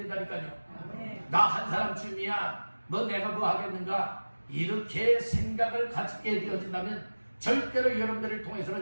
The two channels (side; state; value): both; inverted; correlation -1.00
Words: 아멘. 나 한 사람쯤이야 뭐 내가 뭐 하겠는가 이렇게 생각을 갖게 되어진다면 절대로 여러분들을